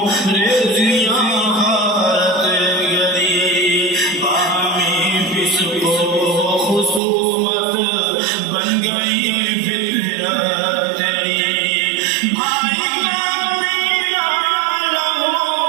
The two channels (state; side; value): drops out; left; at 7.0 s